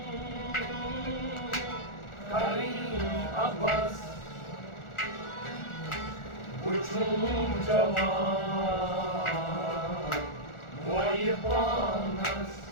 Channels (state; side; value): late; right; 1.4 ms